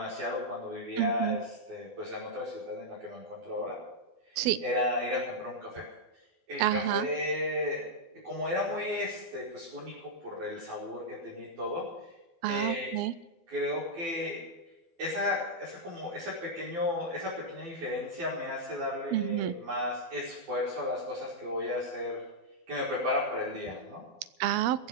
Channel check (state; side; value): late; left; 12 ms